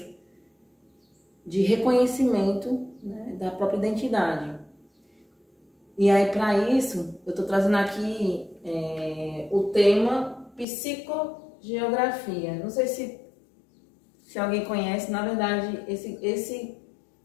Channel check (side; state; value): right; drops out; at 10.7 s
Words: de reconhecimento, né, da própria identidade. E aí, para isso, eu estou trazendo aqui o tema psicogeografia. Não sei se alguém conhece, na verdade, esse